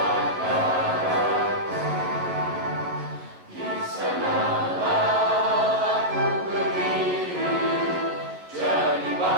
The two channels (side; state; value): left; late; 11 ms